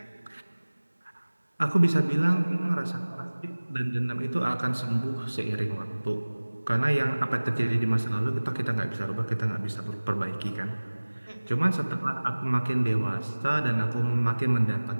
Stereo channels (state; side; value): inverted; both; correlation -1.00